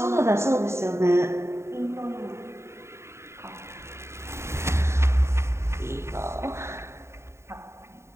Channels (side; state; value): left; late; 0.13 ms